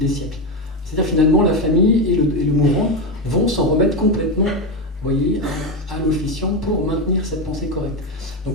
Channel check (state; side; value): normal; both; correlation 0.12